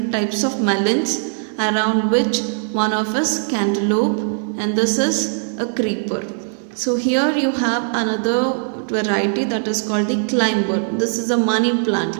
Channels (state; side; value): silent; left; digital silence